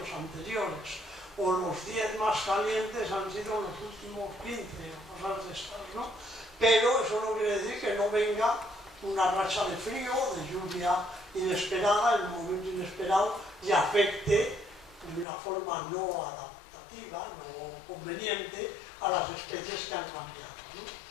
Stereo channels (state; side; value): drops out; right; at 15.2 s